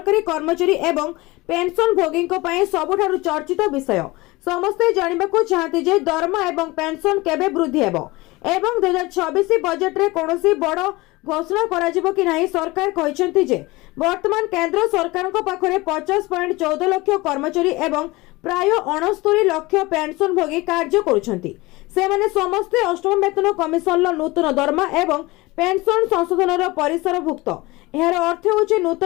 कर्मचारी एवं पेंशन भोगी पई सबुठारु चर्चित विषय। समस्ते जानिबाकू चाहते जे दरमा एवं पेंशन केबे वृद्धि हेबो एवं 2026 बजेट रे कोनोसी बड़ घोषणा कराजिबो कि नाही। सरकार कहिसेंती जे वर्तमान केंद्र सरकार को पाखरे 50.14 लाख कर्मचारी एवं प्राय 69 लाख पेंशन भोगी कार्य करुछंती। सेमाने समस्त अष्टम वेतन कमिशन नूतन दरमा एवं पेंशन संशोधन परिसरभुक्त। यार अर्थ होछि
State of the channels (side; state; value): right; quieter; 21.7 dB